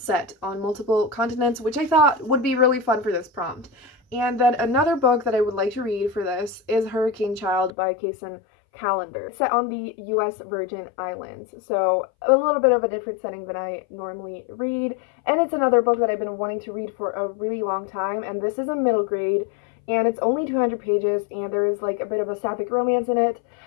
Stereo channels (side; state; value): right; drops out; at 7.7 s